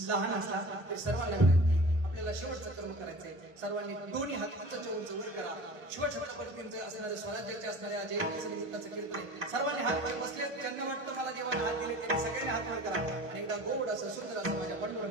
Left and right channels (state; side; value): late; left; 1.5 ms